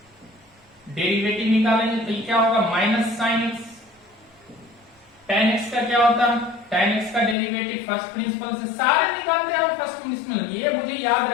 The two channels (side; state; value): right; drops out; at 7.4 s